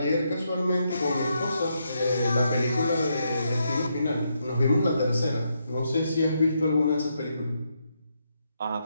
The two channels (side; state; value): both; inverted; correlation -0.80